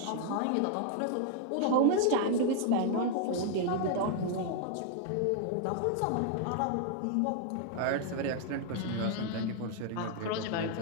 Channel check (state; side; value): different; both; correlation 0.00